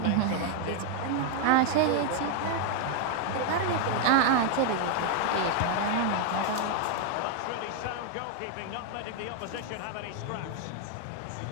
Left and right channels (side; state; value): both; different; correlation 0.00